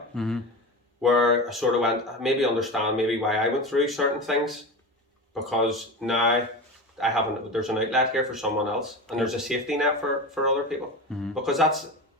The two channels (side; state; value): both; normal; correlation 0.26